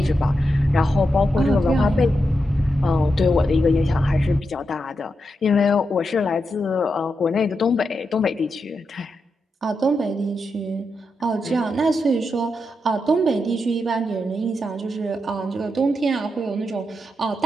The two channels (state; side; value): normal; both; correlation 0.86